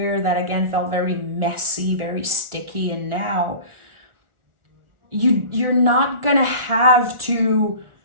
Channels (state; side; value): late; left; 1.4 ms